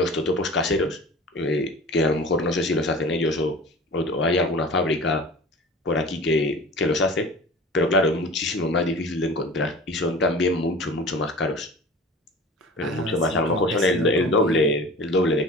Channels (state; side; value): normal; both; correlation 0.39